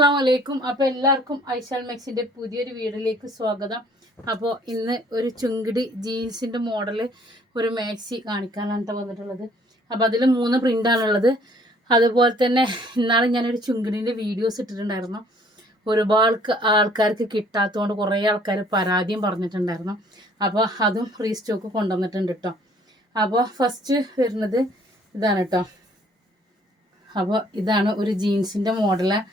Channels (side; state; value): both; normal; correlation 0.59